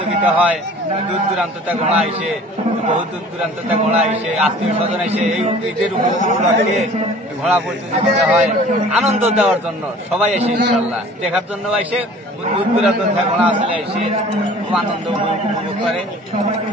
হয়, দূর দূরান্ত থেকে ঘোড়া আসে, বহু দূর দূরান্ত থেকে ঘোড়া আসে, আত্মীয় স্বজন এসে এই ঈদের উপলক্ষে ঘোড়া প্রতিযোগিতা হয় আনন্দ দেওয়ার জন্য। সবাই এসে ইনশাল্লাহ দেখার জন্য এসে দূর দূরান্ত থেকে ঘোড়া আসলে এসে খুব আনন্দ উপভোগ করে।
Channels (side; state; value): both; normal; correlation 0.47